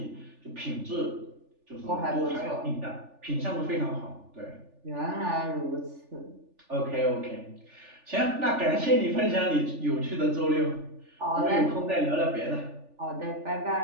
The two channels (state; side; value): late; left; 3.4 ms